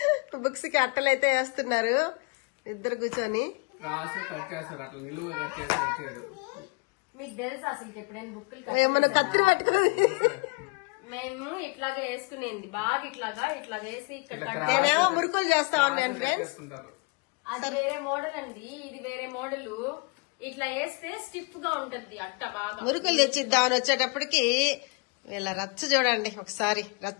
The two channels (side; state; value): right; quieter; 30.3 dB